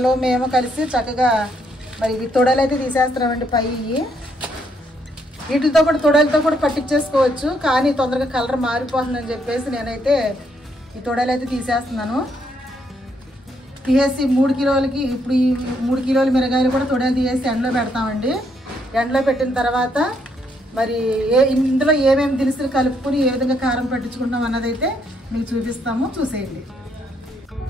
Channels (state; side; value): normal; both; correlation 0.73